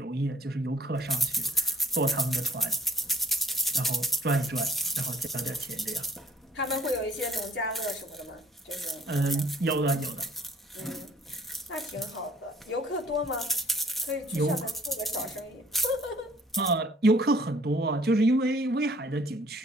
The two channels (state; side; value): normal; both; correlation 0.58